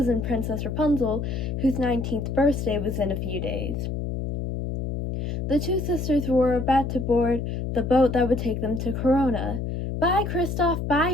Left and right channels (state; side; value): noise; left; hum, 3 dB below the sound